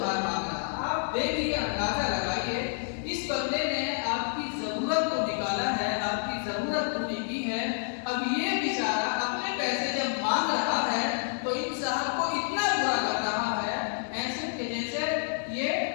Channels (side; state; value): right; silent; digital silence